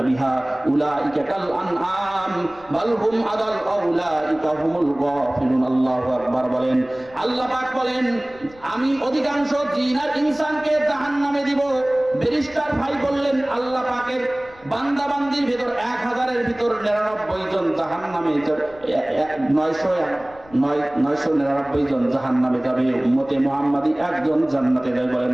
বিহা উলাইকা কাল আনআম বাল হুম আদাল উলাইকা হুমুল গাফিলুন। আল্লাহু আকবার বলেন। আল্লাহ পাক বলেন আমি অধিকাংশ জিন আর ইনসানকে জাহান্নামে দিব। ব্যারিস্টার ভাই বললেন আল্লাহ পাকের বান্দা বান্দির ভিতর 1000-এর ভিতর 99 জন জাহান্নামে, 999 জন জাহান্নামে যাবে। উম্মতে মুহাম্মাদি একজন জান্নাতে যাবে। বলেন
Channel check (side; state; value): left; noise; rumble, 25 dB below the sound